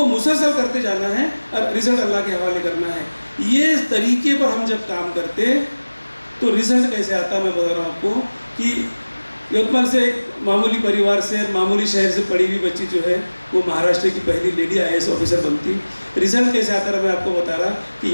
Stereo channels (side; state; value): both; inverted; correlation -1.00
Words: मुसलसल करते जाना है और रिज़ल्ट अल्लाह के हवाले करना है। ये तरीके पर हम जब काम करते तो रिज़ल्ट कैसे आता, मैं बता रहा हूँ आपको कि यवतमाल से एक मामूली परिवार से, मामूली शहर से पढ़ी हुई बच्ची जो है वो महाराष्ट्र की पहली लेडी IAS ऑफिसर बनती। रिज़ल्ट कैसे आता रहा मैं आपको बता रहा